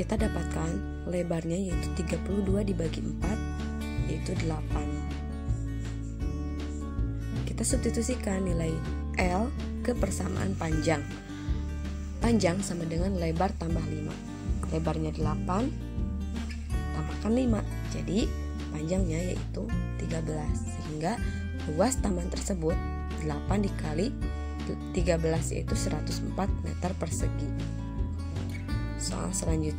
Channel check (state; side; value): identical; both; correlation 1.00